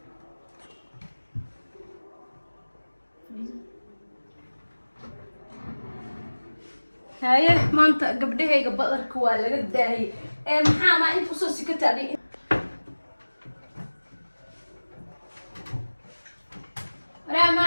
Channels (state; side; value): inverted; both; correlation -1.00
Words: هاي ما انت قبلها قبل كوالا قد هي محا ما انت وصوصي كتابي لا ما